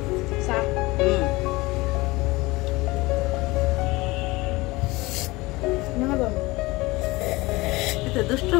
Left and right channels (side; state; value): right; quieter; 21.9 dB